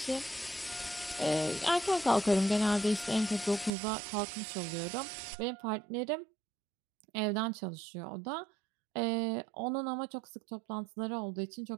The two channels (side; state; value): left; drops out; at 3.7 s